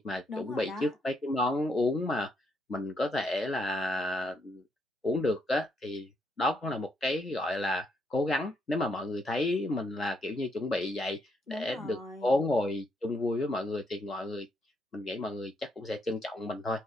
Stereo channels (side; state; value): both; normal; correlation 0.76